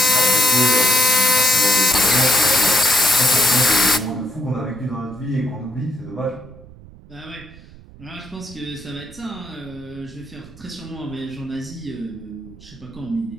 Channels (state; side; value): noise; right; rumble, 21 dB below the sound